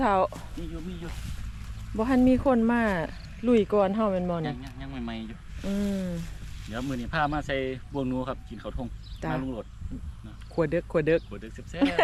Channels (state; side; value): identical; both; correlation 1.00